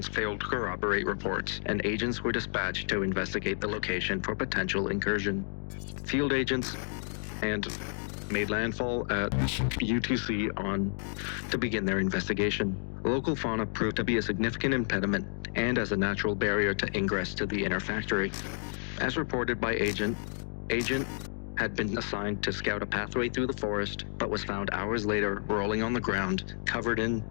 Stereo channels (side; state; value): right; silent; 57 dB below the other